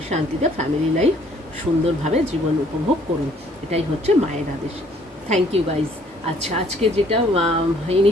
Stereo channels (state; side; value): normal; both; correlation 0.61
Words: শান্তিতে ফ্যামিলি লাইফ সুন্দরভাবে জীবন উপভোগ করুন। এটাই হচ্ছে মায়ের আদেশ। Thank you guys. আচ্ছা, আজকে যেটা